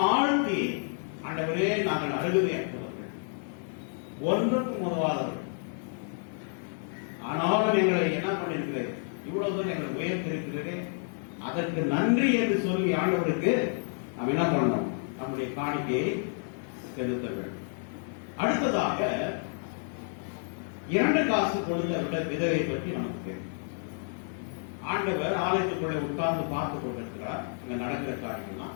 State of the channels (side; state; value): right; silent; 58 dB below the other